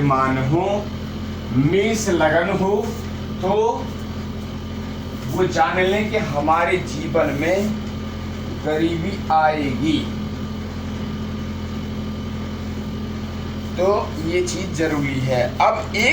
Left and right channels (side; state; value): both; identical; correlation 1.00